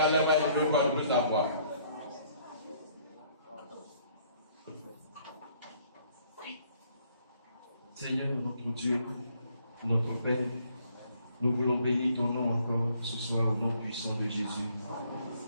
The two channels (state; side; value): inverted; both; correlation -0.64